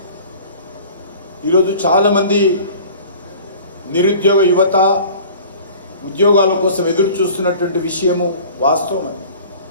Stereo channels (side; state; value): both; inverted; correlation -0.45